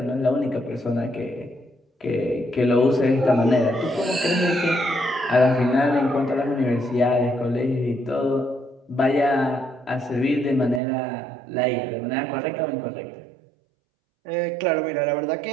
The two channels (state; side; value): drops out; left; at 10.8 s